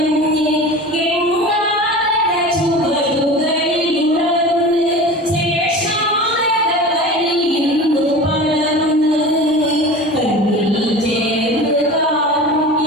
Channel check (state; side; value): normal; both; correlation 0.35